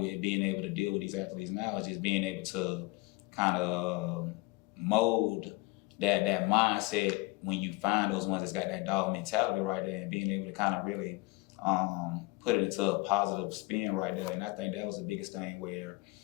being able to deal with these athletes now, is just being able to kind of mold that mindset when you find those ones that's got that dog mentality right there, and being able to kind of really put it into a positive spin right there. And I think that was the biggest thing, where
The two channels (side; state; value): right; quieter; 23.0 dB